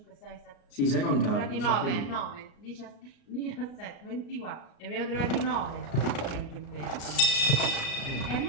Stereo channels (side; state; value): right; late; 37 ms